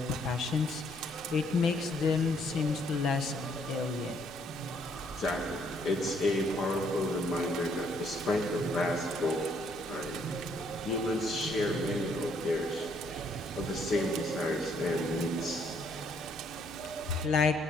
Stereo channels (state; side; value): normal; both; correlation 0.68